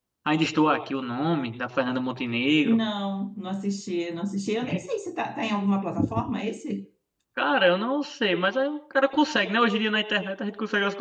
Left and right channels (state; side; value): identical; both; correlation 1.00